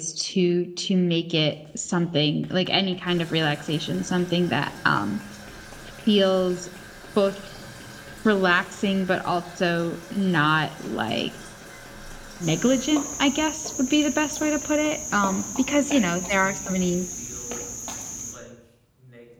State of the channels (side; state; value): both; identical; correlation 1.00